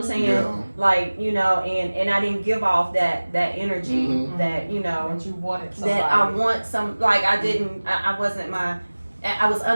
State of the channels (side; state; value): both; inverted; correlation -1.00